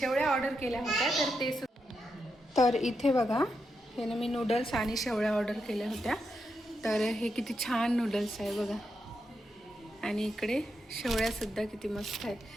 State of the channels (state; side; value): normal; both; correlation 0.85